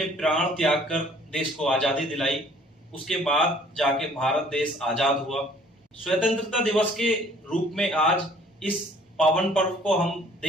प्राण त्याग कर देश को आजादी दिलाई। उसके बाद जाके भारत देश आजाद हुआ। स्वतंत्रता दिवस के रूप में आज इस पावन पर्व को हम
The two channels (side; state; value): both; normal; correlation 0.56